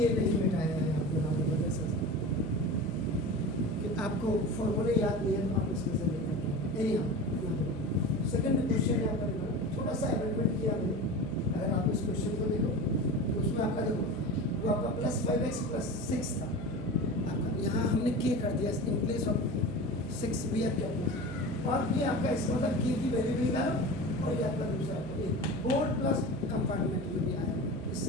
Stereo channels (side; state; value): right; noise; hum, 10 dB below the sound